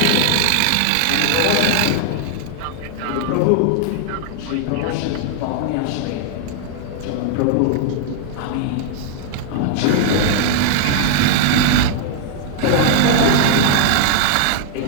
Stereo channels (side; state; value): both; different; correlation 0.00